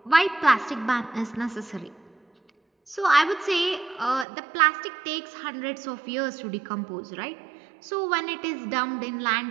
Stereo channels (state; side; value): drops out; left; at 4.2 s